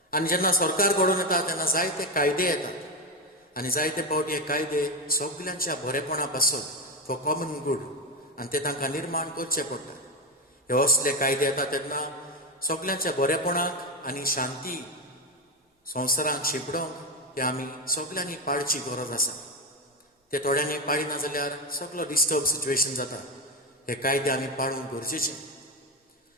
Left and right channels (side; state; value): both; normal; correlation 0.12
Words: आनी जेन्ना सरकार घडोवन येता तेन्ना जायते कायदे येतात आनी जायते फावटी हे कायदे सगल्यांच्या बरेपणा पासत फॉर कॉमन गूड आनी ते तांकां निर्माण करचे पडटा. हे असले कायदे येता तेन्ना सगल्यांच्या बरेपणाक आनी शांती संवसारांत शिपडोवंक हे आमी सगल्यांनी पाळची गरज आसा. ते थोड्यांनी पाळिना जाल्यार सगलो डिस्टर्ब सिच्युएशन जाता. हे कायदे आमी पाळूंक गरजेचे.